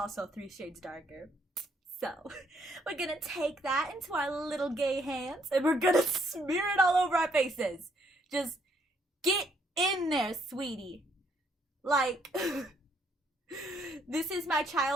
3 shades darker. So, we're gonna take that into our little gay hands and we're gonna smear it all over our faces. Just get in there, sweetie. Like, this is my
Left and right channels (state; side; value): normal; both; correlation 0.70